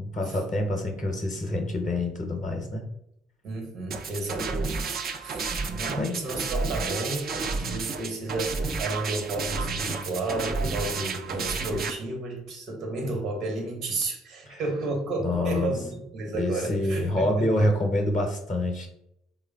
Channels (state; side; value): normal; both; correlation 0.67